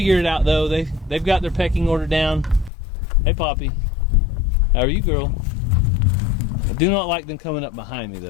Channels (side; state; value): right; drops out; at 2.7 s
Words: it out though. They've got their pecking order down. Hey Poppy, how are you, girl? I do not like them coming up behind me